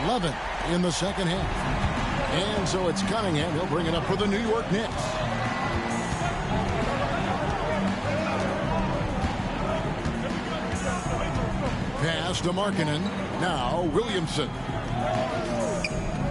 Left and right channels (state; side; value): identical; both; correlation 1.00